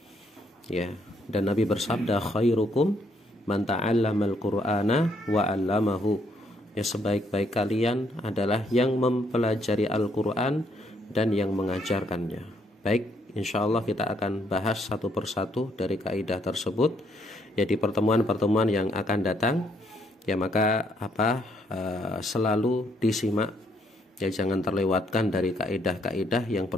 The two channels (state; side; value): normal; both; correlation 0.71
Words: ya, dan Nabi bersabda khairukum man ta'allamal Qur'ana wa 'allamahu, ya sebaik-baik kalian adalah yang mempelajari Al-Qur'an dan yang mengajarkannya. Baik, insyaallah kita akan bahas satu persatu dari kaidah tersebut ya di pertemuan-pertemuan yang akan datang ya, maka selalu disimak ya, jangan terlewatkan dari kaidah-kaidah yang